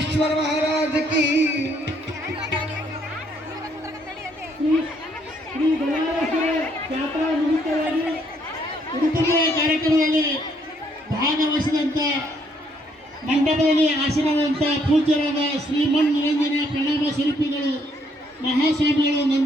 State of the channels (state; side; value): normal; both; correlation 0.69